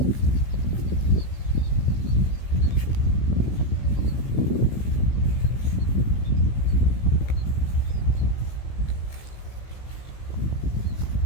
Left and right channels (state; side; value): late; right; 16 ms